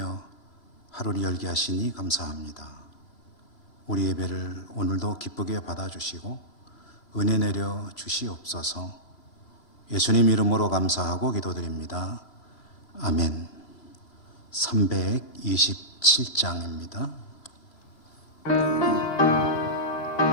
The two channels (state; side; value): late; right; 3.0 ms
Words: 하루를 열게 하시니 감사합니다. 우리 예배를 오늘도 기쁘게 받아주시고 은혜 내려 주시옵소서. 예수님 이름으로 감사하고 기도드립니다. 아멘. 327장입니다.